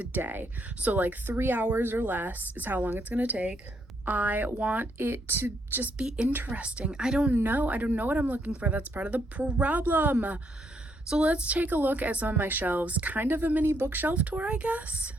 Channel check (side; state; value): both; normal; correlation 0.74